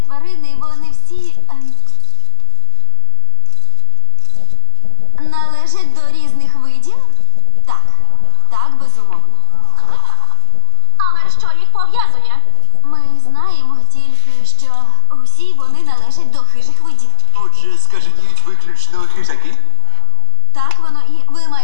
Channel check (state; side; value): different; both; correlation 0.00